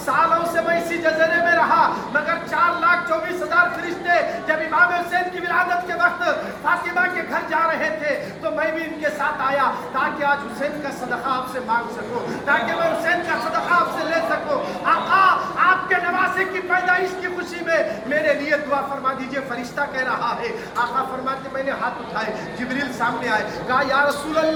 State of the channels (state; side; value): identical; both; correlation 1.00